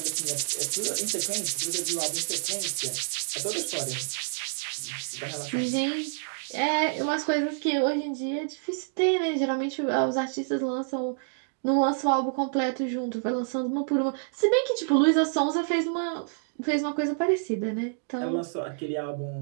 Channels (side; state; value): left; silent; digital silence